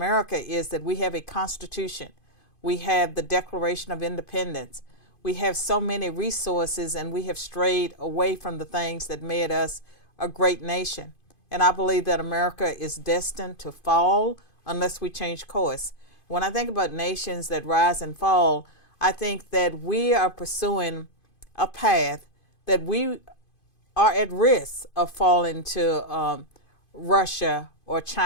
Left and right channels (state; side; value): late; right; 2.5 ms